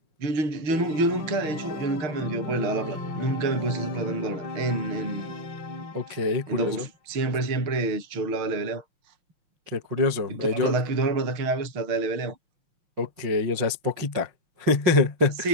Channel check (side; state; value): left; late; 5.6 ms